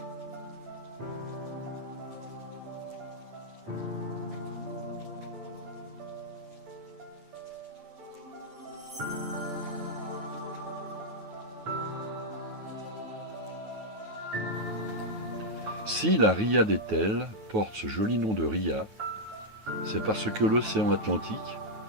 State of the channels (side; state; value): left; late; 9.3 ms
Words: Si la ria d'Etel porte ce joli nom de ria, c'est parce que l'océan Atlantique